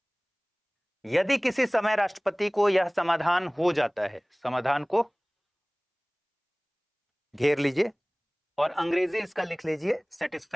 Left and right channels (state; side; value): identical; both; correlation 1.00